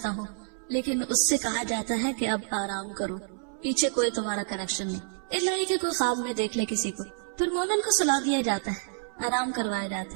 हूँ। लेकिन उससे कहा जाता है कि अब आराम करो, पीछे कोई तुम्हारा कनेक्शन नहीं, इसलिए कि कोई ख्वाब में देख ले किसी को। फिर मोमिन को सुला दिया जाता है, आराम करवाया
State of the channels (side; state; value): left; silent; 59 dB below the other